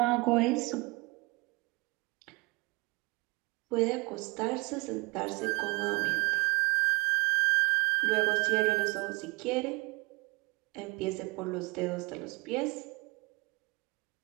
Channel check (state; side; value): quieter; left; 25.8 dB